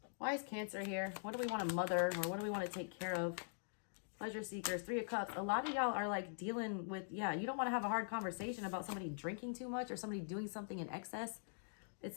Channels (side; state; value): right; silent; digital silence